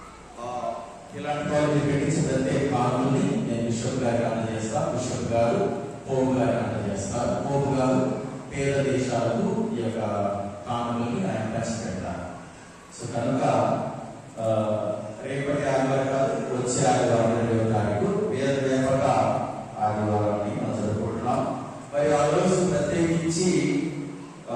ప్రత్యేక కానుకల్ని నేను బిషప్ గారికి అందజేస్తా. బిషప్ గారు పోపు గారికి అందజేస్తారు. పోపు గారు పేద దేశాలకు ఈ యొక్క కానుకల్ని ఆయన పంచిపెడతారు. సో కనుక రేపటి ఆదివారం కాదు, వచ్చే ఆదివారం 2వ తారీఖు వేద వ్యాపక ఆదివారాన్ని మనం జరుపుకుంటున్నాం. ఆ రోజు ప్రత్యేకించి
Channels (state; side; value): identical; both; correlation 1.00